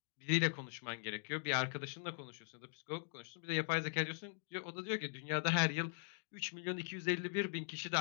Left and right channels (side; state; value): right; silent; digital silence